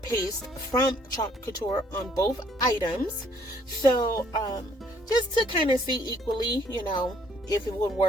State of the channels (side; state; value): both; normal; correlation 0.64